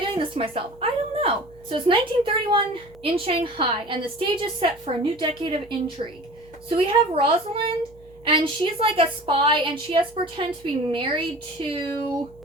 doing this to myself? I don't know. So it's 1931 in Shanghai, and the stage is set for a new decade of intrigue. So we have Rosalind, and she's like a spy, and she has to pretend to be married to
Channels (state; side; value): noise; right; hum, 25 dB below the sound